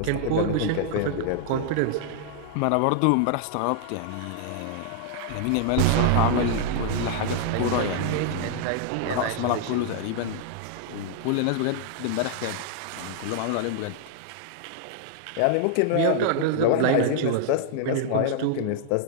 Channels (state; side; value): different; both; correlation -0.01